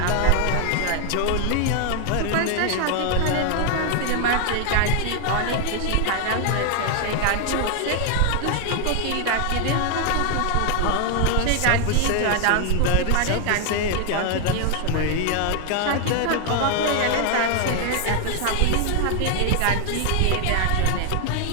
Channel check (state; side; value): different; both; correlation 0.00